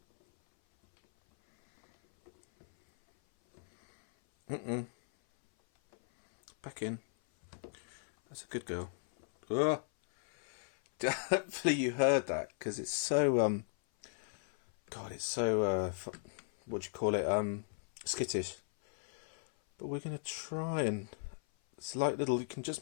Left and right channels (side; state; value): right; silent; 54 dB below the other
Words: Back in. That's a good girl. Ugh. Hopefully you heard that, because it's so God, it's so what do you call it, skittish. But we're going to try, and it's like little, you can just